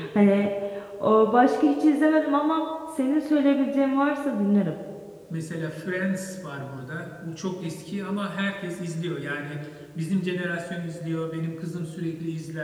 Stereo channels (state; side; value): identical; both; correlation 1.00